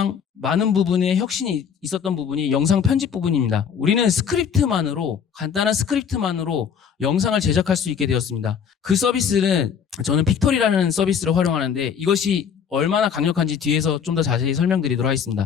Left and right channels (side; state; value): right; quieter; 7.3 dB